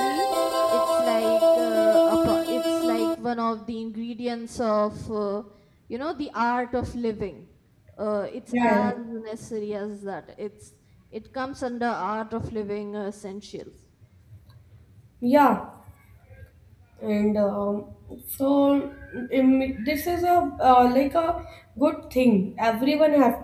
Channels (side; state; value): both; identical; correlation 1.00